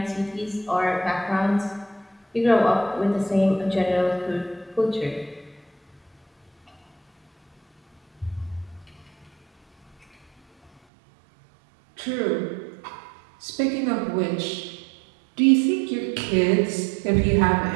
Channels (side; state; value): left; drops out; at 10.7 s